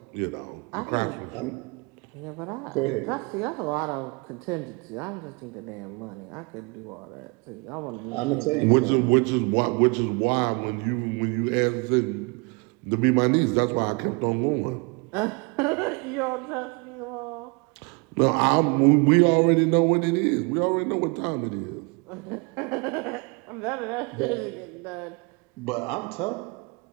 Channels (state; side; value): quieter; left; 30.3 dB